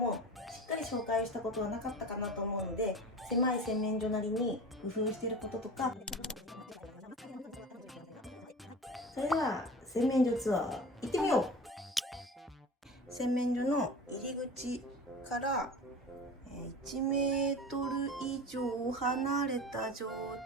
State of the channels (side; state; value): both; normal; correlation 0.34